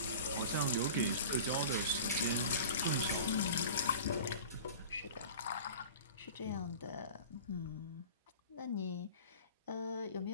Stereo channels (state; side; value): inverted; both; correlation -0.39